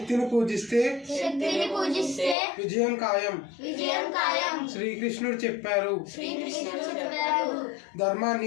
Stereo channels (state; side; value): drops out; right; at 2.4 s